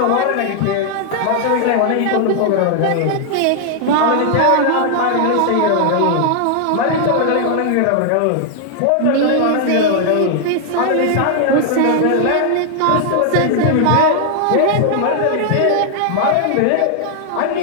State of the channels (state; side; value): different; both; correlation 0.00